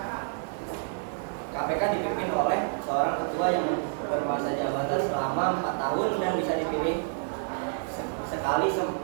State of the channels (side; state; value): left; silent; 59 dB below the other